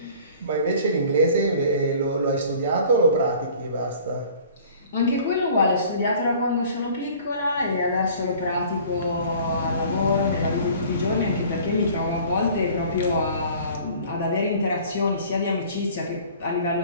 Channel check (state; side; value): inverted; both; correlation -0.49